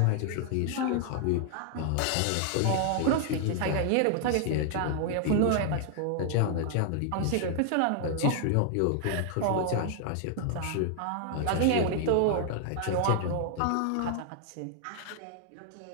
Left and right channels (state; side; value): different; both; correlation 0.00